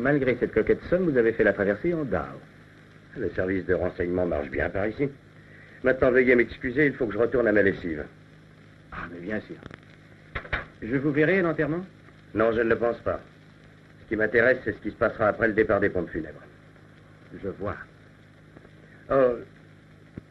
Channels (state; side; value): identical; both; correlation 1.00